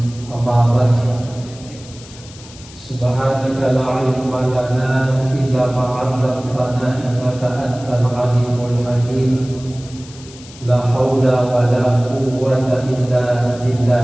أما بعد Subhanaka la ilma lana illa ma 'allamtana innaka antal alimul hakim. La haula wa la quwwata illa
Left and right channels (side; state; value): left; noise; hiss, 20 dB below the sound